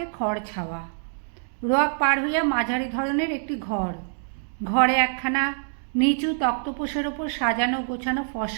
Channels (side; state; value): left; silent; digital silence